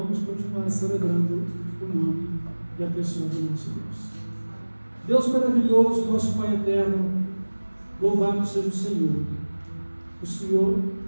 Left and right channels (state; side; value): inverted; both; correlation -1.00